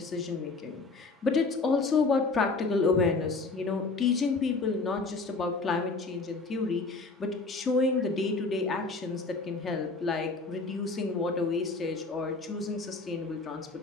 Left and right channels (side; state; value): right; quieter; 3.8 dB